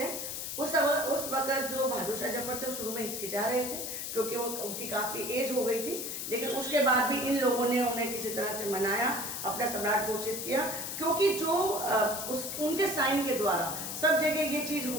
हैं। उस वक्त जो बहादुर शाह जफर थे शुरू में हिचकिचा रहे थे, क्योंकि वो उनकी काफ़ी एज हो गई थी, लेकिन उसके बाद भी इन लोगों ने उन्हें किसी तरह से मनाया, अपना सम्राट घोषित किया, क्योंकि जो उनके साइन के द्वारा सब जगह ये चीज़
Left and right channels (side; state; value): left; noise; hiss, 5 dB below the sound